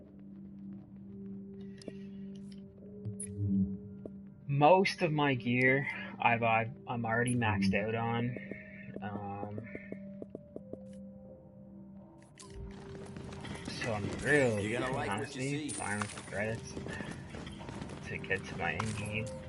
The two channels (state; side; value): identical; both; correlation 1.00